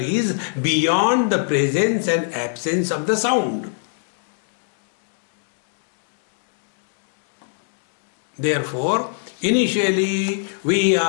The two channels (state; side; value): silent; right; digital silence